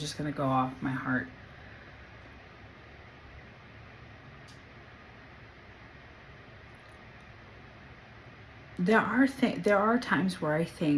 gonna go off my heart. There are times where I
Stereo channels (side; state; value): both; identical; correlation 1.00